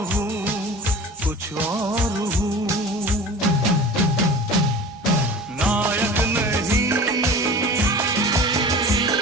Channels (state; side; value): normal; both; correlation 0.38